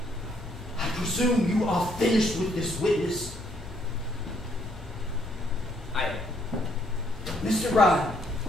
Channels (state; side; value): normal; both; correlation 0.69